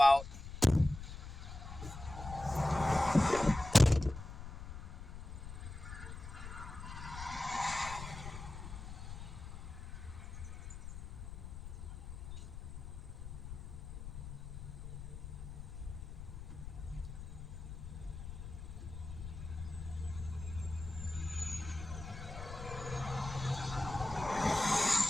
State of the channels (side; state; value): left; noise; rumble, 9 dB below the sound